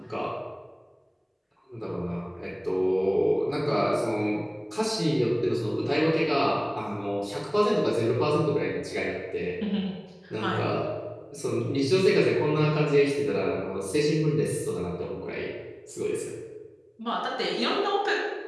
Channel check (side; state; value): both; identical; correlation 1.00